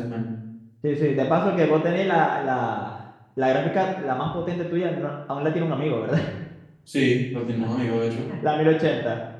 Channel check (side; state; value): both; identical; correlation 1.00